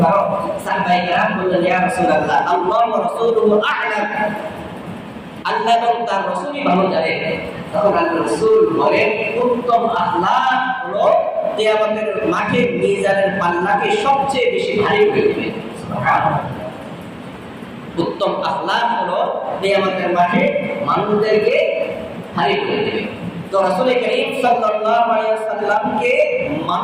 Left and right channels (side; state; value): both; identical; correlation 1.00